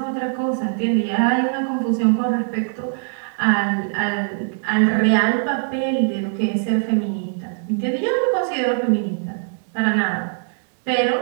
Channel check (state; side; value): silent; left; 65 dB below the other